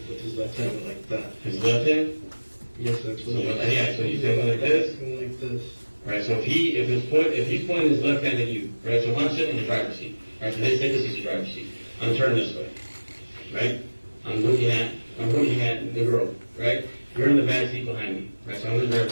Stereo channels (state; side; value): inverted; both; correlation -1.00